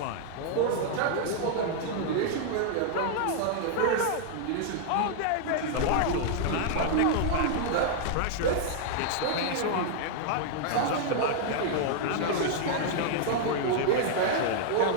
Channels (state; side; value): different; both; correlation -0.01